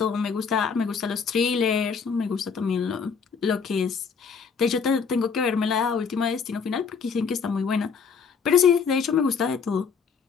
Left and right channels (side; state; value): right; quieter; 5.8 dB